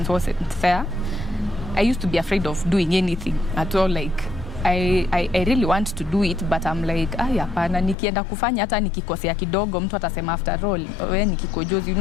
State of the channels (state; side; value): drops out; right; at 8.0 s